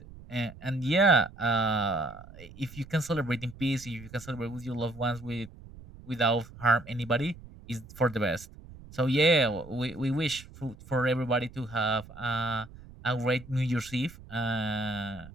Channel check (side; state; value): right; noise; rumble, 18 dB below the sound